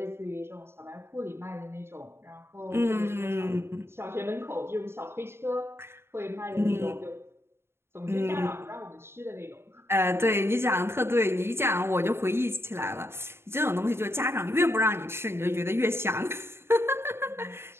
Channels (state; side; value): late; left; 0.12 ms